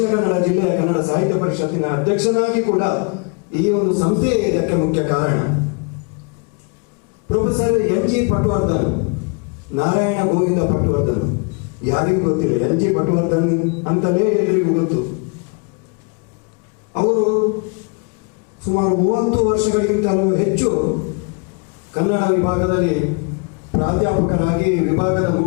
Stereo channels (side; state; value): right; quieter; 34.7 dB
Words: ಕನ್ನಡ ಜಿಲ್ಲೆಯ ಕನ್ನಡ ಸಾಹಿತ್ಯ ಪರಿಷತ್ತಿನ ಅಧ್ಯಕ್ಷನಾಗಿ ಕೂಡ ಈ ಒಂದು ಸಂಸ್ಥೆ ಇದಕ್ಕೆ ಮುಖ್ಯ ಕಾರಣ. Professor N G Patwardhan, Narayana Govinda Patwardhan ಯಾರಿಗೂ ಗೊತ್ತಿಲ್ಲ, ಎನ್ ಜಿ ಪಟವರ್ಧನ್ ಅಂತಲೇ ಎಲ್ಲರಿಗೂ ಗೊತ್ತು. ಅವರು ಸುಮಾರು 30 ವರ್ಷಗಳಿಗಿಂತಲೂ ಹೆಚ್ಚು ಕನ್ನಡ ವಿಭಾಗದಲ್ಲಿ ಪ್ರಾಧ್ಯಾಪಕರಾಗಿ, ವಿಭಾಗದ